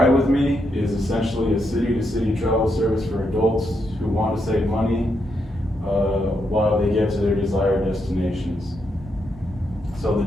With Me is essentially a city-to-city travel service for adults who want to save money while they get to their desired destinations. So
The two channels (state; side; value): normal; both; correlation 0.80